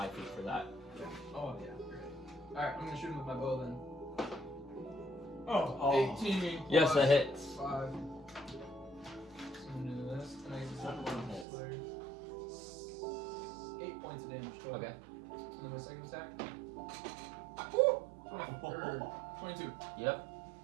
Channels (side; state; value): left; drops out; at 11.5 s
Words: feet for that. Oh, yeah. Great. Alright, I'm gonna shoot him with my bow then. Oh. 18. Yes, that plus hits. 5. So I'm gonna do this, and I get the second one. 8 points of damage total. Okay. And then my second attack. Woo! 22. Yep.